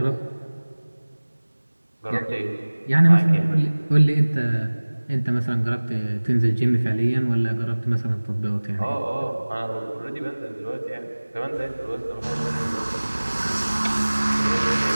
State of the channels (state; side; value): inverted; both; correlation -1.00